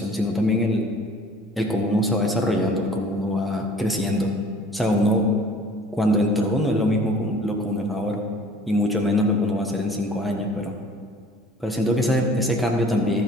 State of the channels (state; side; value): normal; both; correlation 0.50